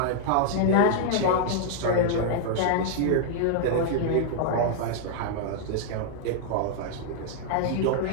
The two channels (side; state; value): both; different; correlation -0.01